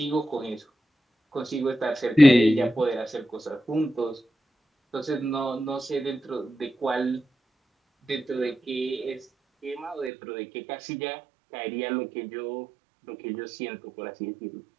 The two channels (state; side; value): drops out; left; at 10.1 s